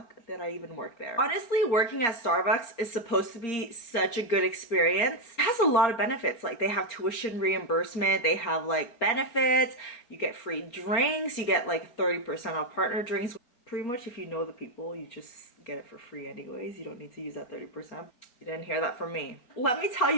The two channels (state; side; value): late; right; 4.3 ms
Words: did I even work there? Honestly, working at Starbucks is supposed to be such a good experience. It has a lot of benefits. Like, they have tuition reimbursement, they have like benefits, you get free drinks, you get like 30% off partner drinks. Pretty much if you know the people, you just get it for free anyways. You don't need to use that 30%. You didn't hear that from me. Let me tell